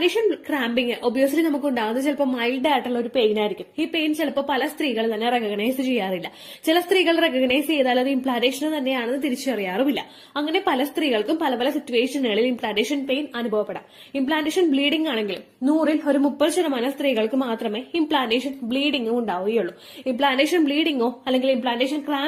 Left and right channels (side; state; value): both; identical; correlation 1.00